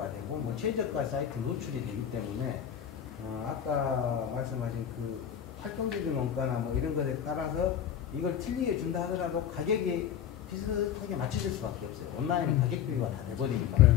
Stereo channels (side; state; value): right; quieter; 9.3 dB